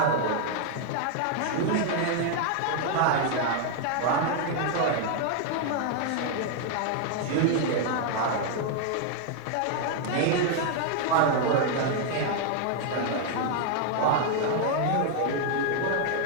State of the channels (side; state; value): both; different; correlation 0.00